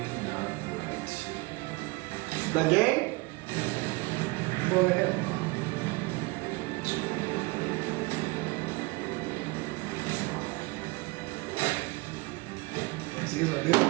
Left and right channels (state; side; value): quieter; left; 25.1 dB